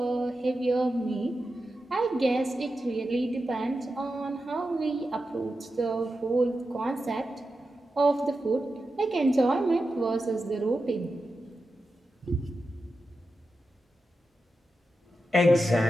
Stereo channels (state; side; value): normal; both; correlation 0.90